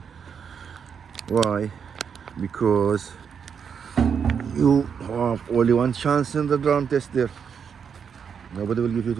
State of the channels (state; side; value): quieter; left; 7.0 dB